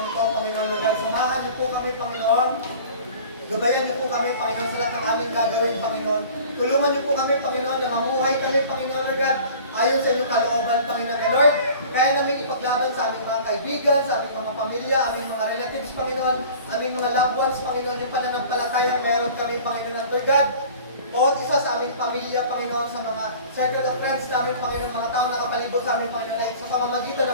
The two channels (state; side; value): inverted; both; correlation -0.44